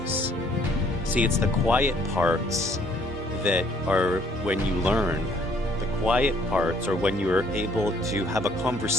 See, it's the quiet parts that are when you learn. The quiet parts are when you are able to have a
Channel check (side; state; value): both; normal; correlation 0.62